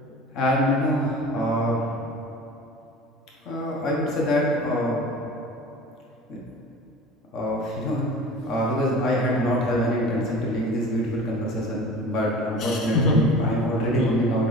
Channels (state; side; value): normal; both; correlation 0.40